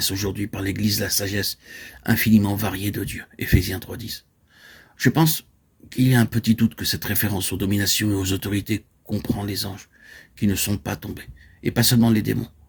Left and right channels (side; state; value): both; identical; correlation 1.00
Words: aujourd'hui par l'Église la sagesse infiniment variée de Dieu. Éphésiens 3.10. Je pense qu'il y a un petit doute que cette référence aux dominations et aux autorités comprend les anges qui ne sont pas tombés, et pas seulement les démons.